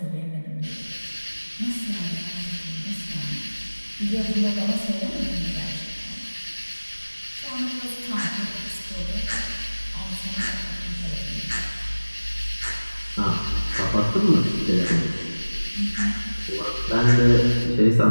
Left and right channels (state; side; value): inverted; both; correlation -1.00